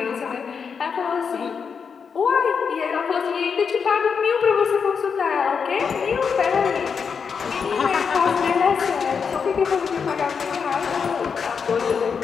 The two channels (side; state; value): right; quieter; 6.1 dB